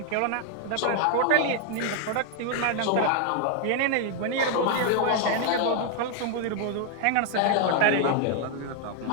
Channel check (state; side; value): different; both; correlation 0.00